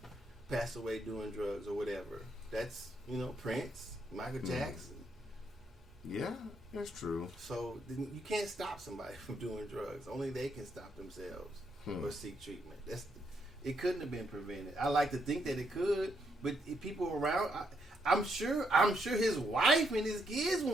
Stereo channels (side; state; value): both; normal; correlation 0.77